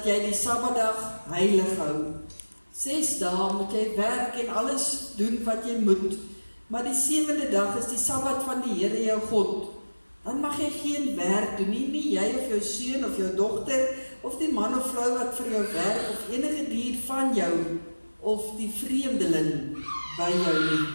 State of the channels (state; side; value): inverted; both; correlation -1.00